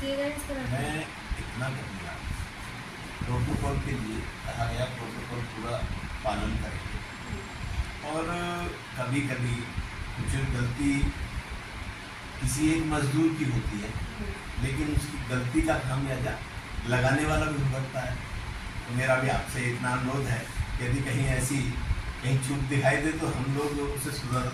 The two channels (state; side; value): identical; both; correlation 1.00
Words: दिए गए इस तरह? मैं इतना कहूँगा, प्रोटोकॉल के लिए कहा गया, प्रोटोकॉल पूरा पालन करेंगे, और कभी कभी कुछ गलती किसी एक मजदूर की होती है, लेकिन उसकी गलती का खामियाजा लगाने वाला भी भुगतता है। तो मेरा भी आपसे इतना अनुरोध है, यदि कहीं ऐसी कहीं चूक दिखाई दे तो हम लोग उसे